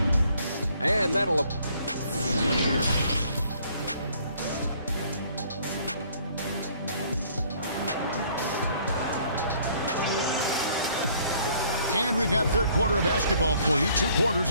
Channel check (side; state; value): both; inverted; correlation -0.61